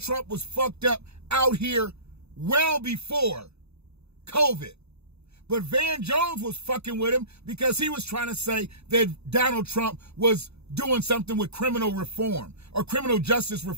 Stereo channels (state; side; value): late; left; 0.79 ms